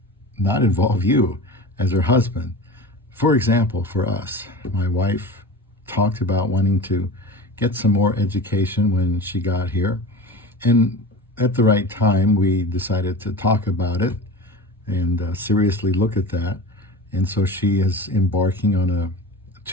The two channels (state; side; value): normal; both; correlation 0.33